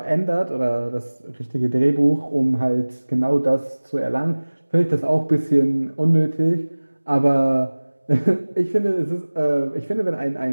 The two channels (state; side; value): inverted; both; correlation -1.00